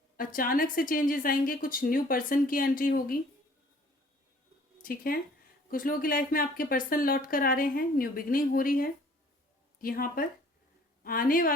अचानक से चेंजेस आएंगे, कुछ न्यू पर्सन की एंट्री होगी, ठीक है। कुछ लोगों की लाइफ में आपके पर्सन लौट कर आ रहे हैं, न्यू बिगनिंग हो रही है। यहाँ पर आने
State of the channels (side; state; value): both; normal; correlation 0.55